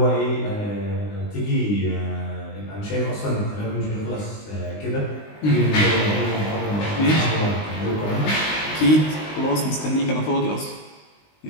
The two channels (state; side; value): late; right; 19 ms